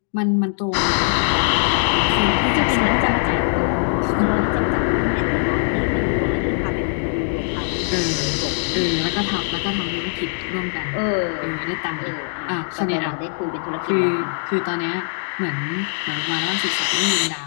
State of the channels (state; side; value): silent; right; digital silence